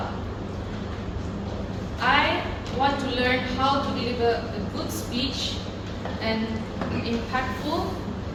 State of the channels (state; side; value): identical; both; correlation 1.00